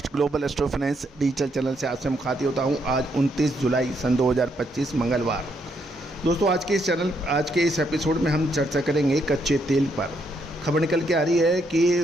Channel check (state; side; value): normal; both; correlation 0.75